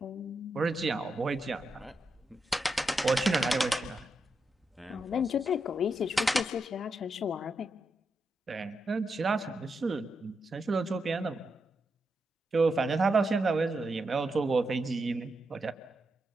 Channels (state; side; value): normal; both; correlation 0.85